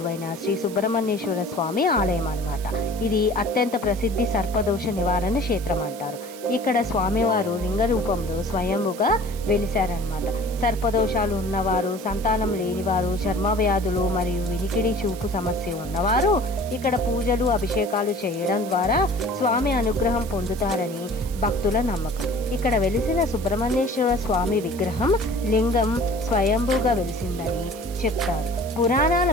శ్రీ సుబ్రహ్మణ్యేశ్వర స్వామి ఆలయం అన్నమాట. ఇది అత్యంత ప్రసిద్ధి సర్పదోష నివారణ క్షేత్రం అంటారు. ఇక్కడ స్వామివారు లింగ రూపంలో స్వయంభుగా వెలిశారనమాట. సర్పదోషాలు ఉన్నవారు, సంతానం లేనివారు, చర్మ వ్యాధులు మరియు వినికిడి చూపు సమస్య ఉన్నవారు ఇక్కడ పూజలు అభిషేకాలు చేయడం ద్వారా స్వామి అనుగ్రహం పొందుతారని భక్తుల నమ్మకం. ఇక్కడ వెలిసిన సుబ్రహ్మణ్యేశ్వర స్వామి విగ్రహం లింగం స్వయంభూగా వెలిసిందని చెప్తారు. పురాణాల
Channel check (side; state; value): right; noise; hiss, 17 dB below the sound